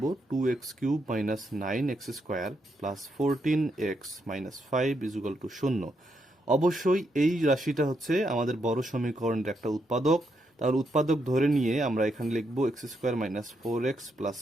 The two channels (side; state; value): both; normal; correlation 0.79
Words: 2x cube minus 9x square plus 14x minus 5 equal to 0। অবশ্যই এই রাশিটা হচ্ছে আমাদের বড় সমীকরণের একটা উৎপাদক। তাহলে উৎপাদক ধরে নিয়ে আমরা এখানে লিখব x square minus 4x plus